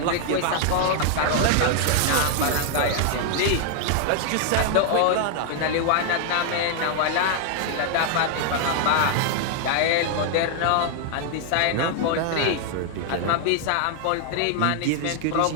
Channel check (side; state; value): both; different; correlation 0.00